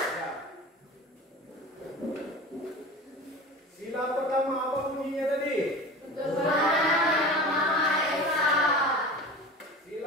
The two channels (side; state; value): both; normal; correlation 0.34